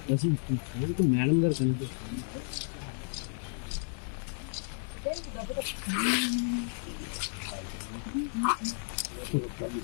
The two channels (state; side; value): silent; right; 56 dB below the other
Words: మేడం గారు కనిపిస్తుంది.